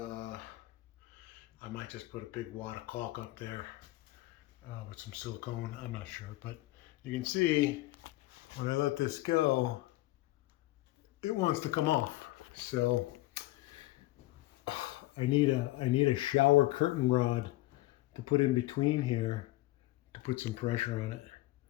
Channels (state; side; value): quieter; right; 18.2 dB